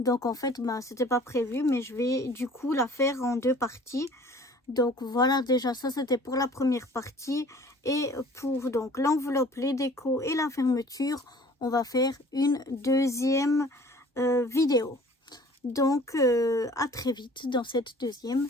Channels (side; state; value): both; normal; correlation 0.50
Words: en fait c'était pas prévu, mais je vais du coup la faire en deux parties. Donc voilà, déjà ça c'était pour la première partie, et pour donc l'enveloppe, les décos et la fermeture, on va faire une deuxième vidéo. Donc à très vite dans cette deuxième